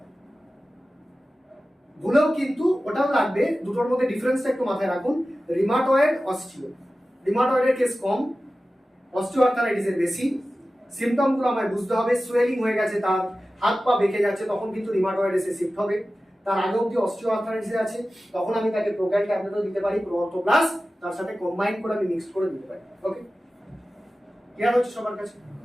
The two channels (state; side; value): normal; both; correlation 0.95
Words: ভুলেও কিন্তু ওটাও লাগবে, দুটোর মধ্যে ডিফারেন্সটা একটু মাথায় রাখুন। Rheumatoid, osteo. রিমাটয়েডের কেস কম, অস্টিওআর্থারাইটিসের বেশি। সিম্পটমগুলো আমায় বুঝতে হবে। সোয়েলিং হয়ে গেছে, তার হাত পা বেঁকে যাচ্ছে, তখন কিন্তু রিমাটয়েড এসে শিফট হবে। তার আগে অব্দি অস্টিওআর্থারাইটিস আছে, তখন আমি তাকে প্রোক্যাল ট্যাবলেটও দিতে পারি, প্রো অর্থো প্লাস, তার সাথে কম্বাইন করে আমি মিক্স করে দিতে পারি। ওকে, ক্লিয়ার হচ্ছে সবার কাছে?